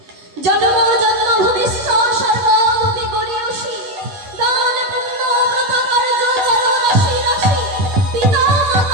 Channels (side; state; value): left; late; 10 ms